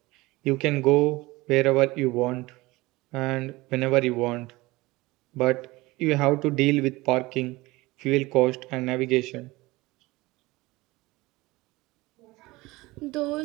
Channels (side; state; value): left; quieter; 20.8 dB